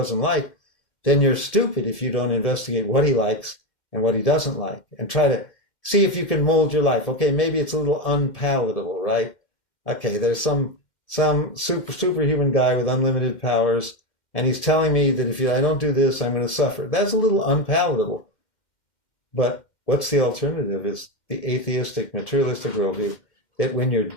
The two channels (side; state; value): right; late; 2.1 ms